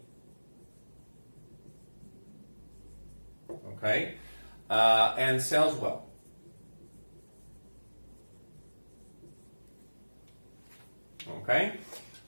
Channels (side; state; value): both; inverted; correlation -1.00